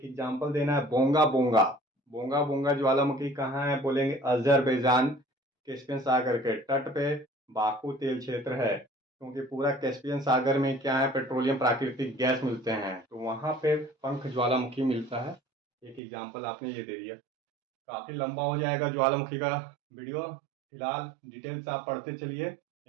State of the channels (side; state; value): left; drops out; at 16.0 s